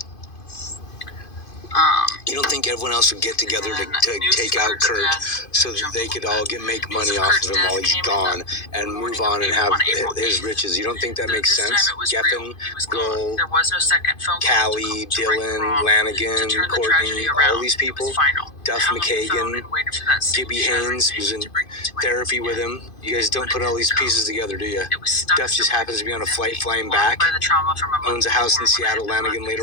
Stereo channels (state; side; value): late; right; 2.5 ms